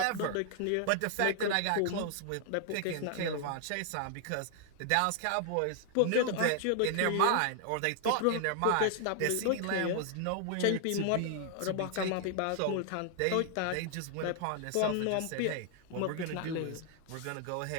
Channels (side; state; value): both; different; correlation 0.00